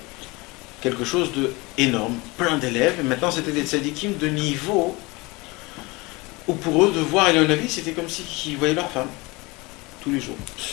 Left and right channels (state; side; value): quieter; right; 24.4 dB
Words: quelque chose de énorme, plein d'élèves. Et maintenant c'était des tzadikim de niveau où pour eux, de voir Elion-Navi, c'était comme s'ils voyaient leur femme tous les jours.